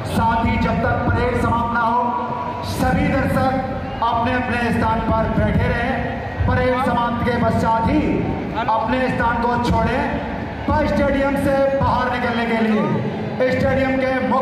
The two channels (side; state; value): both; identical; correlation 1.00